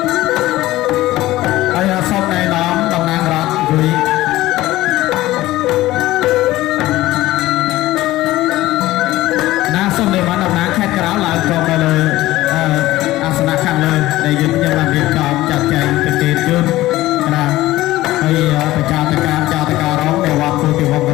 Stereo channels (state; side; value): quieter; right; 16.7 dB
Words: ហើយសូមណែនាំតំណាងរដ្ឋជួយសូមនិមន្តតំណាងខេត្តក្រៅឡើងចូលទៅលើអាសនៈខាងលើដែលយើងខ្ញុំបានរៀបចំចាត់ចែងប្រទេសជូនណាហើយប្រចាតការចាតការរងនៅវត្តពោធិវង្សក